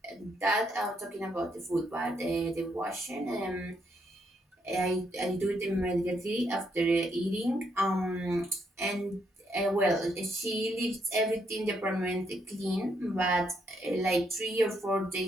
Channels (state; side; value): normal; both; correlation 0.75